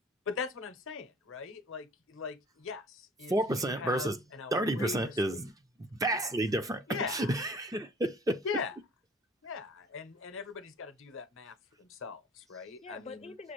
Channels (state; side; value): normal; both; correlation 0.51